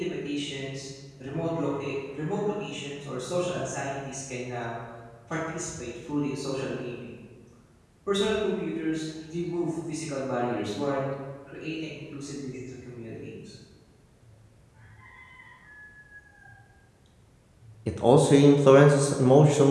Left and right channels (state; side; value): identical; both; correlation 1.00